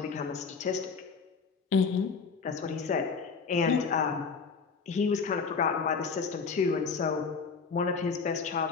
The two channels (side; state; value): right; quieter; 5.2 dB